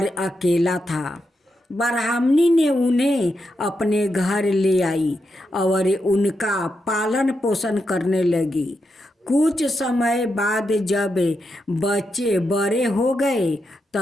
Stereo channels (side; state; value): both; normal; correlation 0.85